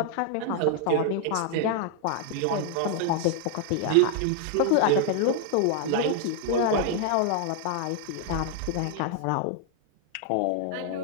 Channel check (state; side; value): different; both; correlation 0.00